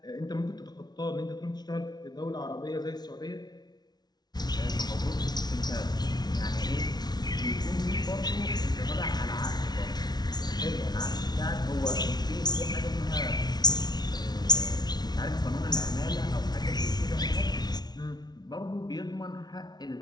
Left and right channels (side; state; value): right; late; 0.19 ms